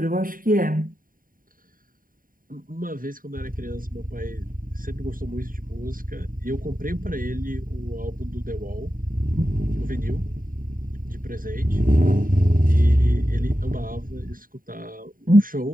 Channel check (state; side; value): late; left; 0.41 ms